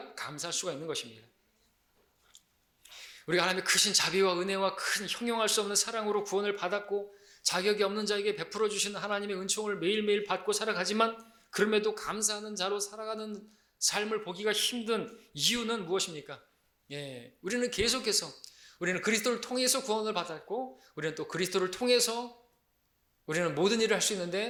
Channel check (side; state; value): both; identical; correlation 1.00